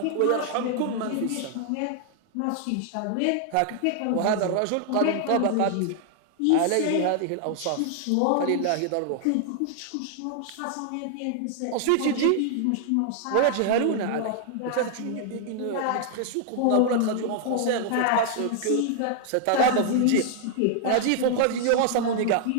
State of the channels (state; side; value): different; both; correlation 0.00